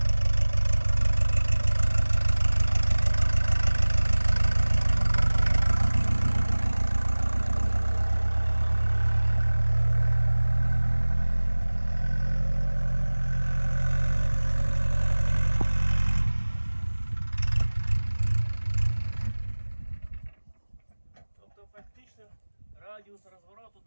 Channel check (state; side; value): inverted; both; correlation -1.00